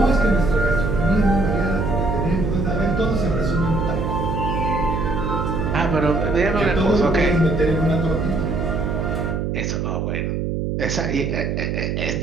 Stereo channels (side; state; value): right; noise; hum, 1 dB below the sound